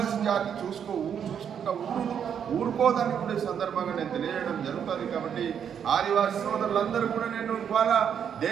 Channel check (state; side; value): quieter; left; 8.1 dB